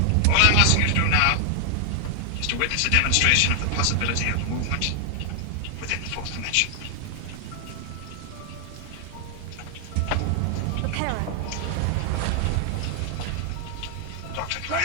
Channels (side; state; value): both; different; correlation 0.00